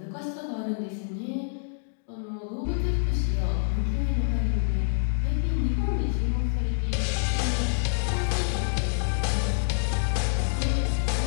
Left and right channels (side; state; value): right; silent; digital silence